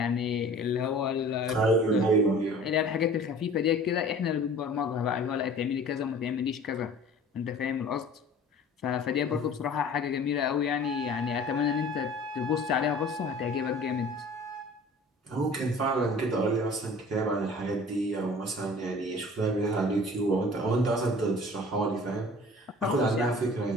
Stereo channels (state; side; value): normal; both; correlation 0.45